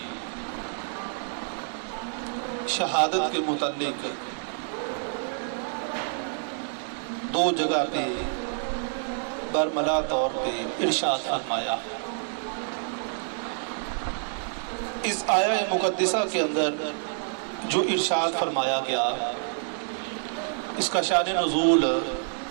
شہادت کے متعلق دو جگہ پہ برملا طور پہ ارشاد فرمایا۔ اس آیہ مقدسہ کے اندر جو ارشاد فرمایا گیا، اس کا شان نزول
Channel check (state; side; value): silent; left; digital silence